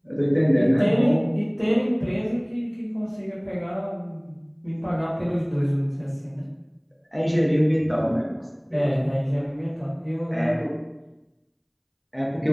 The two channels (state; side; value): identical; both; correlation 1.00